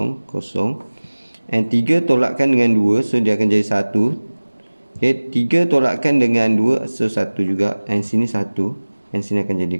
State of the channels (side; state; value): both; inverted; correlation -1.00